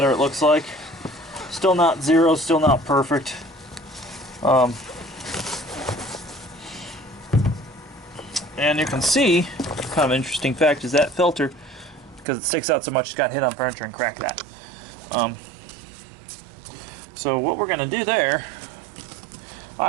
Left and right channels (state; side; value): drops out; left; at 12.2 s